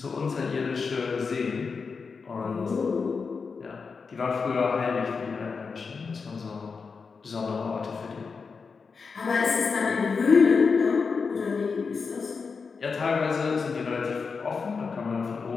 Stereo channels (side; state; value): right; quieter; 5.1 dB